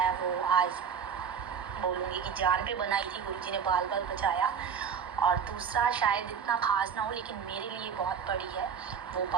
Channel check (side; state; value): left; quieter; 6.9 dB